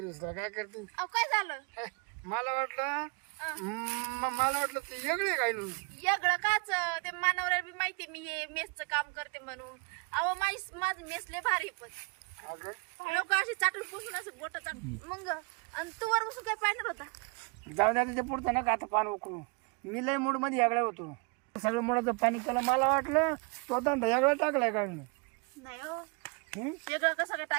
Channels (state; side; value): quieter; left; 32.5 dB